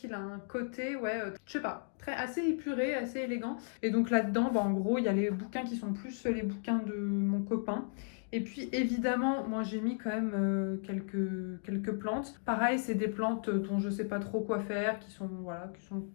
a un côté, je sais pas, assez épuré, assez élégant. Et donc là-dedans, en gros, il y a les bouquins qui sont plus les bouquins de mon copain. Et puis évidemment, moi j'ai mis quand même quelques plantes. Pareil, c'est des plantes dont je sais pas trop quoi faire, qui sont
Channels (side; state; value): right; silent; digital silence